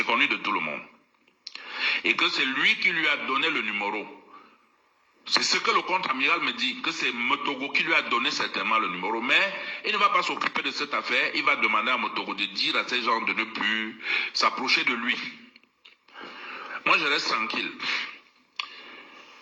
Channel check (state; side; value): identical; both; correlation 1.00